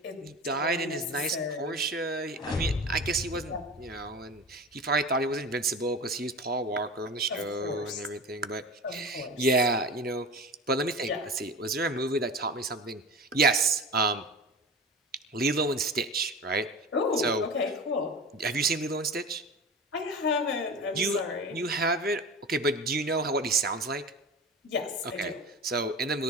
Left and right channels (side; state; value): both; normal; correlation 0.31